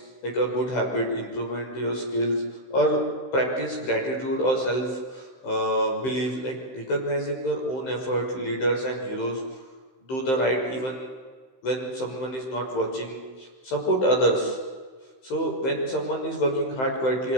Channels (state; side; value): late; right; 15 ms